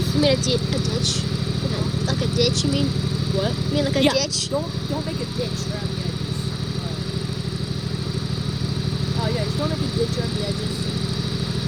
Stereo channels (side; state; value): both; identical; correlation 1.00